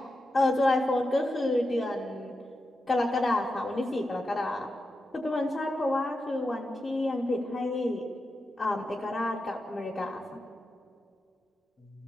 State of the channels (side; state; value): both; normal; correlation 0.89